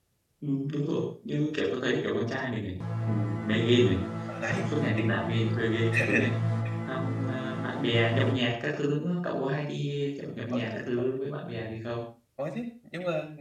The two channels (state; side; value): identical; both; correlation 1.00